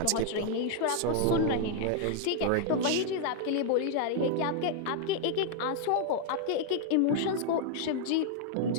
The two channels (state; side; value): different; both; correlation 0.00